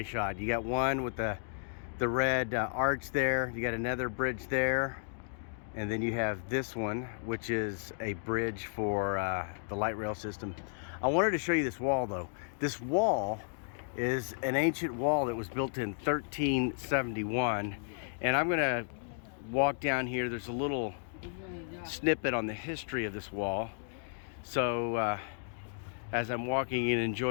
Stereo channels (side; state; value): right; silent; digital silence